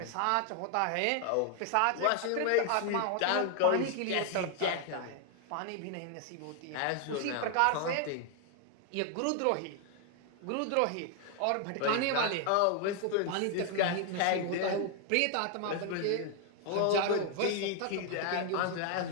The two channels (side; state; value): both; different; correlation 0.00